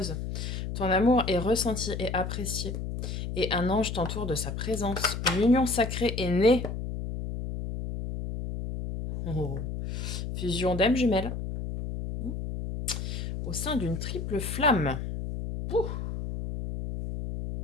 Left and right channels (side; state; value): left; noise; hum, 5 dB below the sound